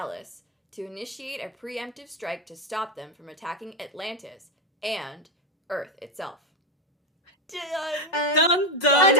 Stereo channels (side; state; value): both; normal; correlation 0.08